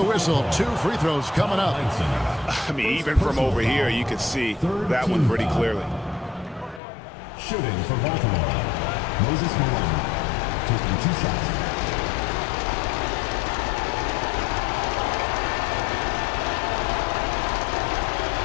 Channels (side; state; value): right; drops out; at 6.8 s